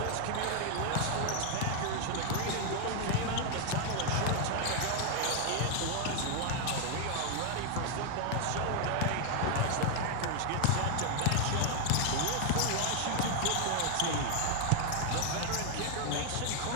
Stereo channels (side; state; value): both; different; correlation 0.00